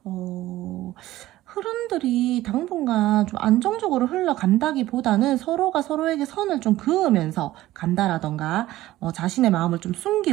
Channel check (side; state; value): left; quieter; 15.8 dB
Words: 흐름들이 당분간 좀 안정적으로 흘러간다기보다는 서로가 서로에게 선을 좀 그으면서 간다라던가, 자신의 마음을 좀